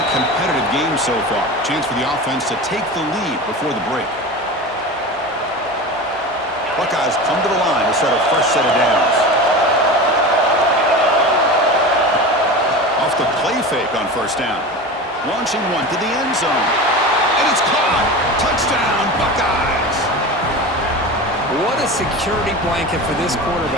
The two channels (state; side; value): normal; both; correlation 0.30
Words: competitive game so far. Chance for the offense to take the lead before the break. Buckeyes come to the line to start a fresh set of downs. Off the play fake on first down. Launching one to the end zone. And it's caught. Touchdown, Buckeyes. What a security blanket for this